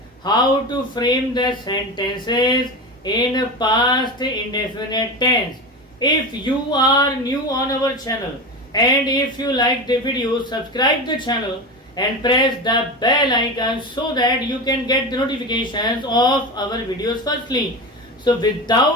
how to frame the sentences in past indefinite tense. If you are new on our channel and if you like the video, subscribe the channel and press the bell icon so that you can get the notifications of our videos firstly. So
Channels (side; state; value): both; normal; correlation 0.24